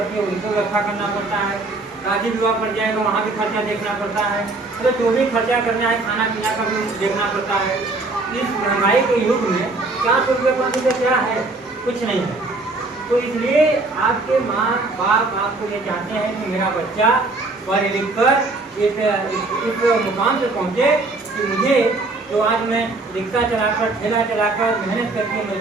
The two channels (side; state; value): left; quieter; 3.3 dB